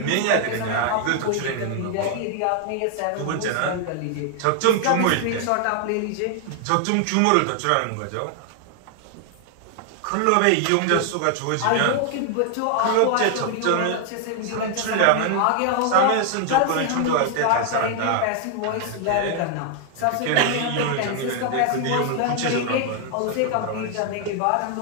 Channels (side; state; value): both; different; correlation 0.00